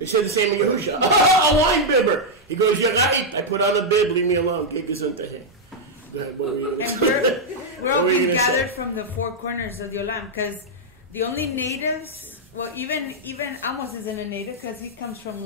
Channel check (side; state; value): both; normal; correlation -0.03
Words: He said the same in Yahusha. A wine bibber. He goes, Yagait, I put on a bib, leave me alone. Go ahead, what were you And say? we're all being gathered from the four corners of the Olam, because the only natives, well, even Amos isn't a native because he comes from